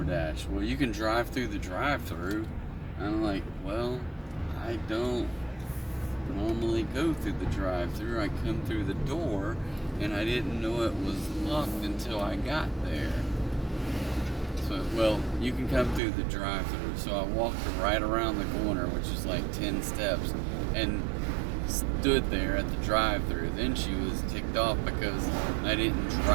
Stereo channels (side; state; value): left; drops out; at 16.0 s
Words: Well, you can drive through the drive-through. I'm like, well, I don't normally go through the drive-through. I come through the door, and I didn't know it was locked until I got there. So, well, you can come through the drive-through. So I walked right around the corner, which is like 10 steps, and stood there at the drive-through. Then she was ticked off because I didn't